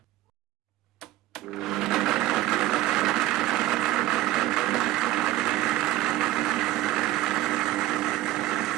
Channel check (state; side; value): quieter; left; 15.5 dB